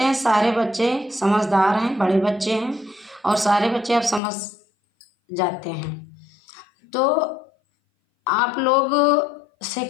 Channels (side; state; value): right; drops out; at 4.2 s